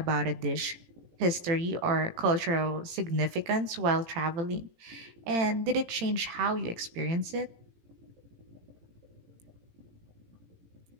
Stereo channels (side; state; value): left; late; 18 ms